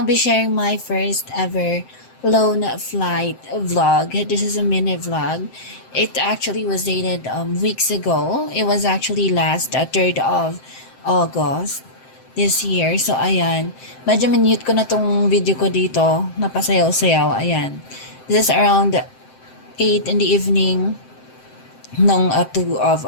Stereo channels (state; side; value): late; right; 7.7 ms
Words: be sharing my first ever lone flight vlog. This is a mini vlog. It actually was dated weeks ago. It was actually last 3rd of August this year. So ayan, medyo minute ko na tong video ko dito, napasayaw-sayaw. Ayan, this is around 8 in the evening nung 2 of